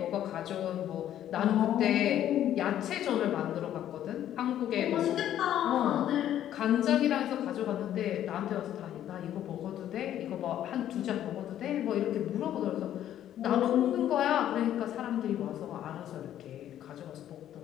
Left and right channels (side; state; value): right; quieter; 11.4 dB